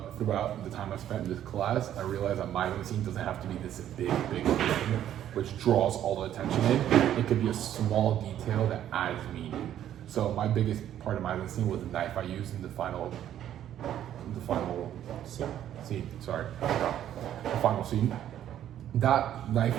throughout the time I spent in this class, I realized that Meisenstein doesn't have to be this big thing which draws all the attention in. It could be a small detail that adds meaning. So my biggest part of Meisenstein was the knife I used in the final scene. Sorry, the final scene. That knife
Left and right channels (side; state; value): left; quieter; 11.1 dB